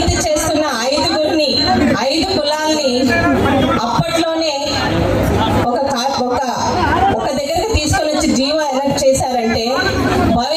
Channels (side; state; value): both; identical; correlation 1.00